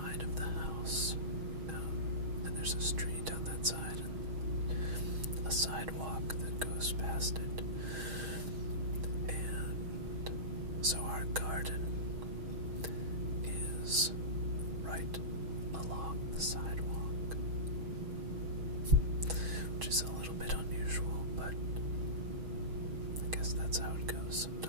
of the house. And there's a street on that side and a sidewalk that goes past it. And so our garden is right along the sidewalk, which is a little bit unusual, but I guess that's how it goes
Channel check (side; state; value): left; late; 6.3 ms